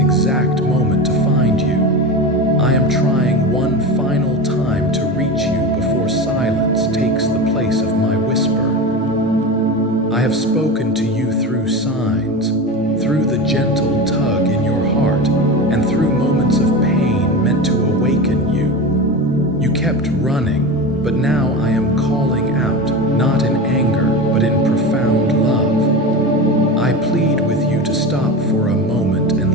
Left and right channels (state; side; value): normal; both; correlation 0.25